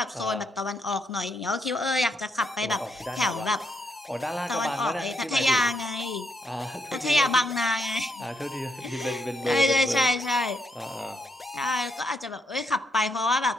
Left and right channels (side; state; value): both; normal; correlation 0.78